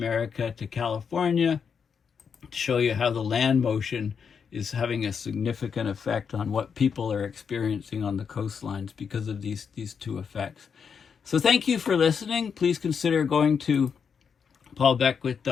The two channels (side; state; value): right; quieter; 6.5 dB